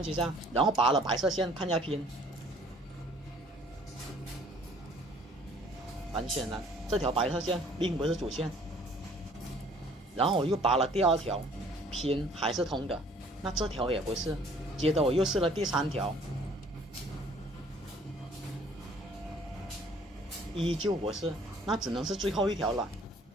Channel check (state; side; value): normal; both; correlation 0.56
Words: 机上，然后拔了白色线看一下拼。很显然，这条白色线并不是主线。然后我又拔了第2条，拼还是通的，那这条也不是。接着我又试了第3条，依旧不是，那只能是最后一条了。